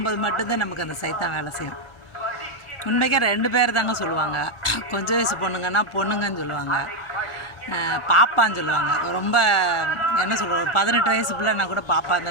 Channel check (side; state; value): right; late; 1.5 ms